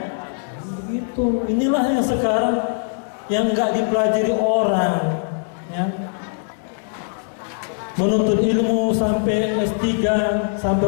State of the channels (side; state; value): right; silent; digital silence